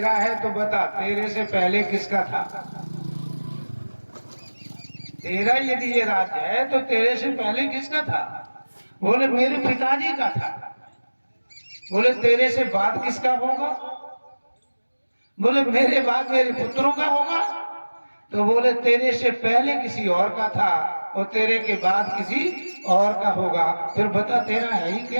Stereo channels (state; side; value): inverted; both; correlation -1.00